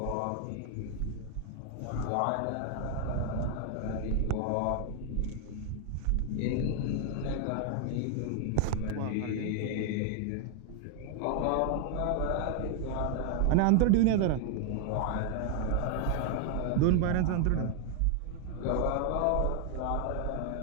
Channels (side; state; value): both; different; correlation 0.00